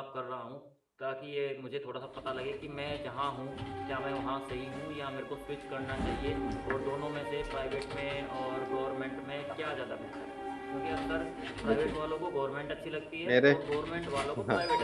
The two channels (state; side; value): identical; both; correlation 1.00